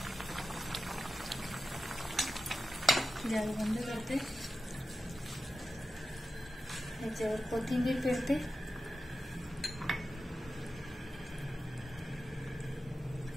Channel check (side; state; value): both; normal; correlation 0.92